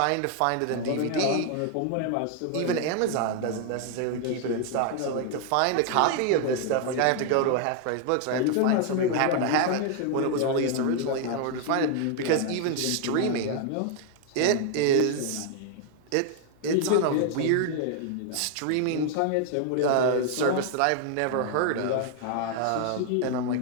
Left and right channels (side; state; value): both; different; correlation 0.00